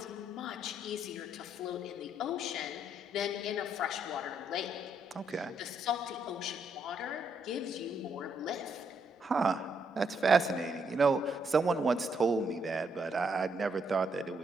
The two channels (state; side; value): normal; both; correlation 0.74